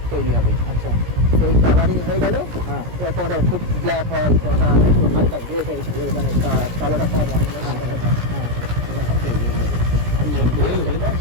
তৈরি হবে। আচ্ছা, সেই কালারিং হয়ে গেল, হ্যাঁ, কোনটা খুব ব্ল্যাক হয়, কোনটা একটু হালকা গ্রে টাইপের, মানে কালোটা কম হয়, হ্যাঁ, হ্যাঁ, এরকম তৈরি হয়ে যাবে। এটা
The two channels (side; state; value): left; late; 17 ms